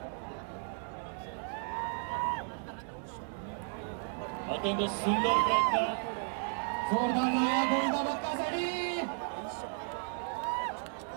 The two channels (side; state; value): left; silent; 55 dB below the other